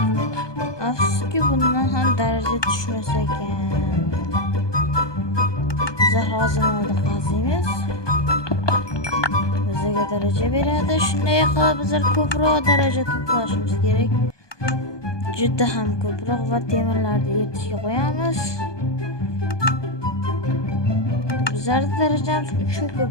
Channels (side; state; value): right; late; 1.2 ms